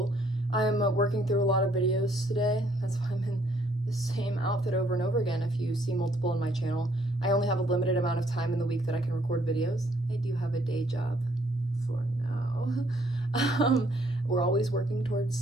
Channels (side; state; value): both; normal; correlation 0.66